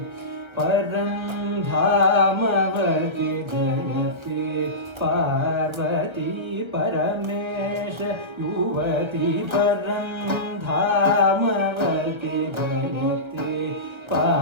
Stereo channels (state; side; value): late; left; 1.3 ms